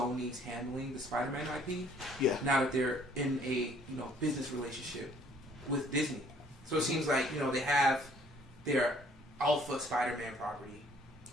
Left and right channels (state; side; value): normal; both; correlation 0.59